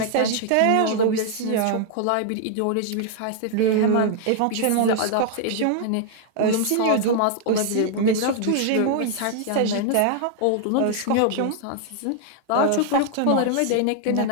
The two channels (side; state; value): both; different; correlation 0.00